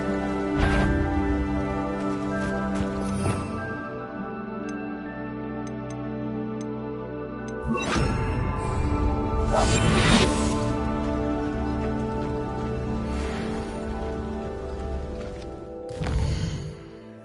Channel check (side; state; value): both; identical; correlation 1.00